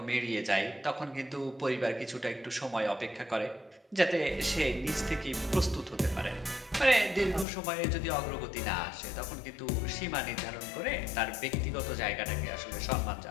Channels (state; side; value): drops out; right; at 7.5 s